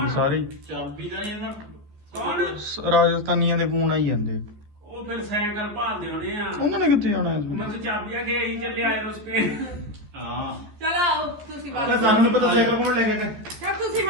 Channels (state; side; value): late; left; 14 ms